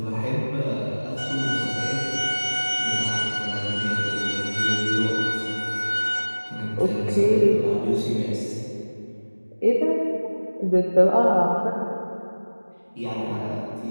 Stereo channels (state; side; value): inverted; both; correlation -1.00